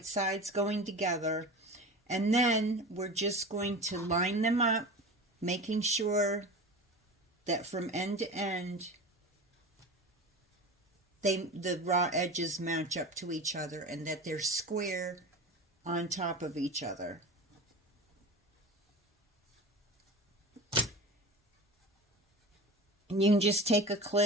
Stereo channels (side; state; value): both; normal; correlation 0.32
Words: sides going together, and then we're just going to line them up, making sure that from end to end the raw edges match up to each other and that they're square on top of each other. And you can just take a